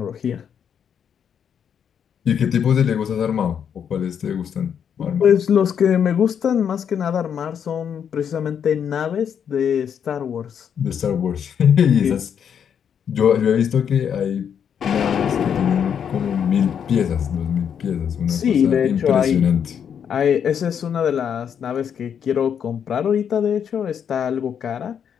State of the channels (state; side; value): quieter; right; 8.0 dB